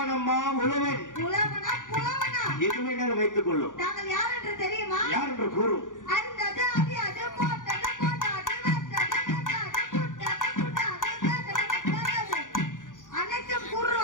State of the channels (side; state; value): right; late; 0.88 ms